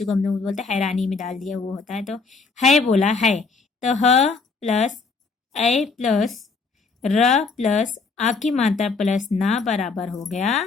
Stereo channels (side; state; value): right; quieter; 4.4 dB